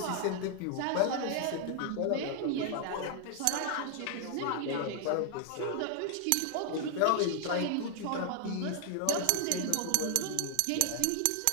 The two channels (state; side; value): different; both; correlation 0.00